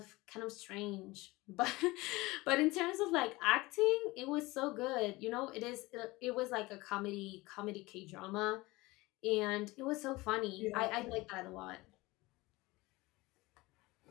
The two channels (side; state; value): right; quieter; 21.3 dB